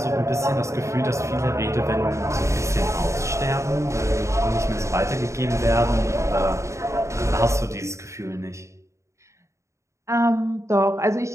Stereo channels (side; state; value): left; late; 0.14 ms